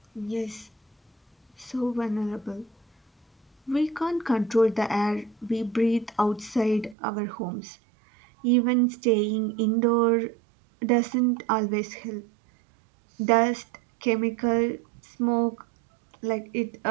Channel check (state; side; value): drops out; left; at 7.0 s